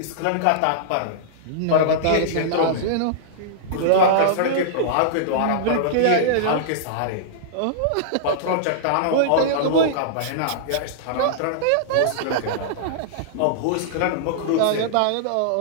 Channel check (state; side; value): different; both; correlation -0.02